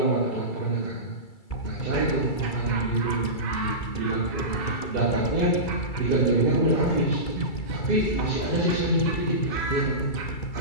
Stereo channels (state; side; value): late; right; 2.3 ms